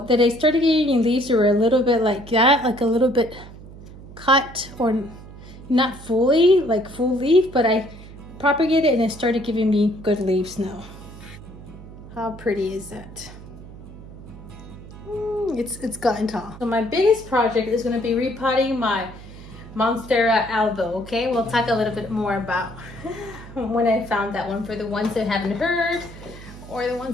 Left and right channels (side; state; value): right; noise; hum, 16 dB below the sound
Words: that I started getting leaves that were a little bit like that, like a little bit cut, or not fully, like full leaf, but I propagated and it started giving me good leaves now. How pretty is that? It's gotten tall. So my biggest project is gonna be repotting my Monstera Albo, okay? We'll talk a little bit more about when I found that one, for the ones that haven't heard, or the ones